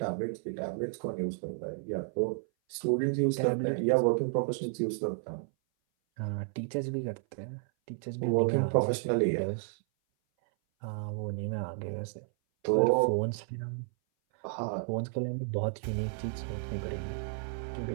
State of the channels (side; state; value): left; silent; 56 dB below the other